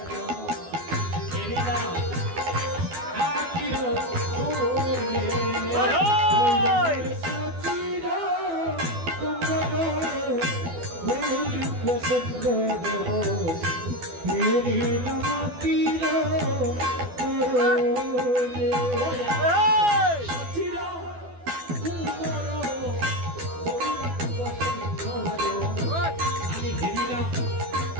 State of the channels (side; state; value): left; late; 12 ms